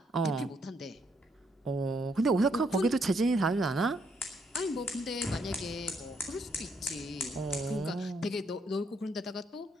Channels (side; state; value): both; normal; correlation 0.73